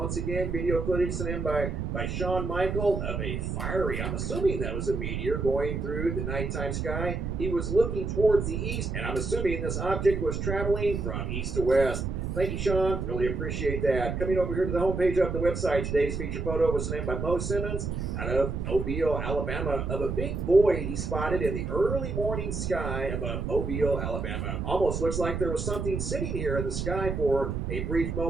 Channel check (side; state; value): right; noise; rumble, 3 dB below the sound